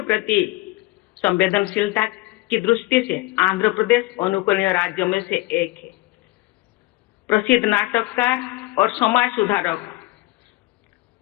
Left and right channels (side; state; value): right; quieter; 20.4 dB